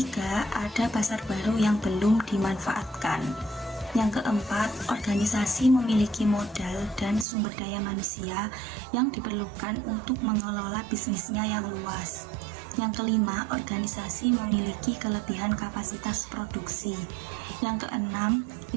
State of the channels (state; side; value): drops out; left; at 7.2 s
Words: ada pasar baru yang belum dimanfaatkan. Yang keempat, organisasi memiliki modal dan sumber daya manusia yang diperlukan untuk mengelola bisnisnya yang luas. Yang kelima, organisasi memiliki kelebihan kapasitas produksi. Yang keenam,